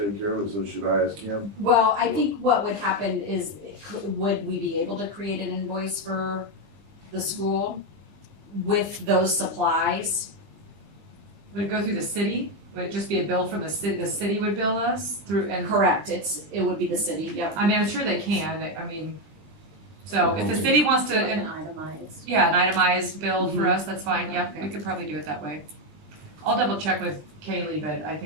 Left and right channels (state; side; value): late; left; 20 ms